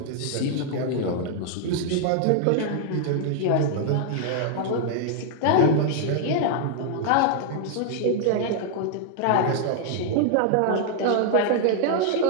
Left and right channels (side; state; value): both; different; correlation 0.00